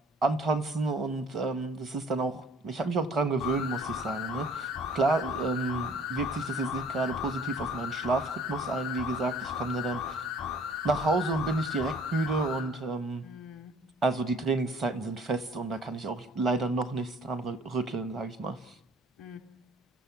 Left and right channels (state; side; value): normal; both; correlation 0.54